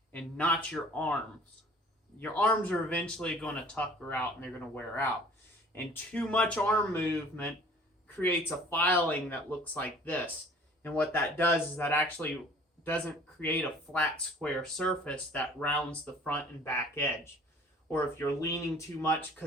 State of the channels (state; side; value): normal; both; correlation 0.51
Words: and not your arms. Your arms are eventually going to tucker out and they're going to wear out. And too much arm movement creates a filing that looks like this. And what that does is that actually doesn't create a flat square surface that rounds the front and back edge. Or if you're leaning too much